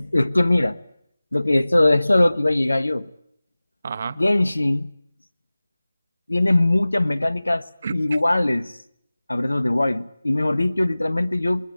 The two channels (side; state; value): both; inverted; correlation -0.98